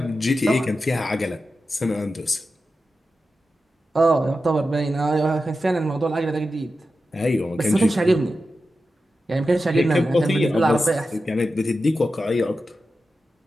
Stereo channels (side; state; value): both; normal; correlation 0.91